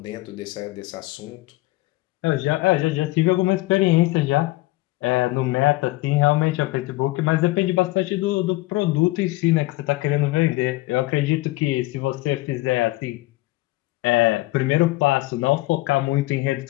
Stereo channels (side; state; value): right; quieter; 19.5 dB